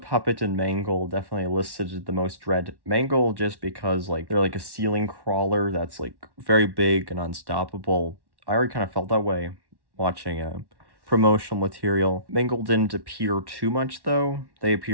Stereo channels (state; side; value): late; left; 1.1 ms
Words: and Mangle definitely elicited the most dread. Mangle just because, like, they're like a ceiling crawler that's, like, very big and unstoppable. I already kind of felt that way watching promotional material. Mangle didn't appear too much, though. They